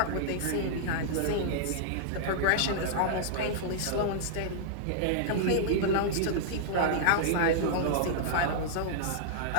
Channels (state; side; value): different; both; correlation -0.02